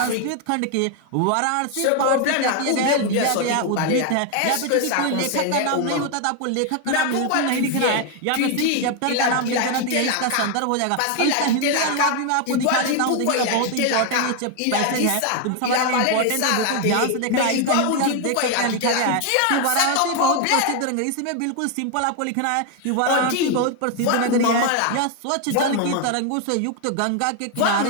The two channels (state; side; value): different; both; correlation 0.01